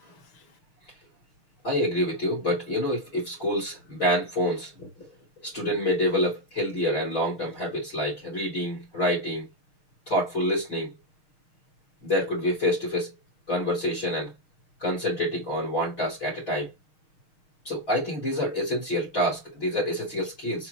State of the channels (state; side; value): late; right; 6.4 ms